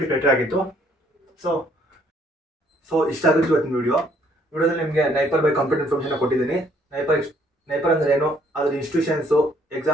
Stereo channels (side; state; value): both; normal; correlation 0.65